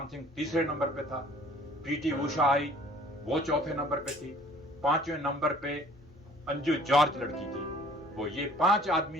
सिंह तीसरे नंबर पे था, पीटी उषा आई, वो चौथे नंबर पे थी, 5वें नंबर पे अंजू जॉर्ज लड़की थी। वो ये 5 आदमी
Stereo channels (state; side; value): normal; both; correlation 0.54